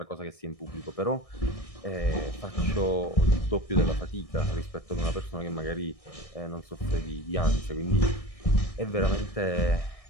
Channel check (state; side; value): late; right; 1.6 ms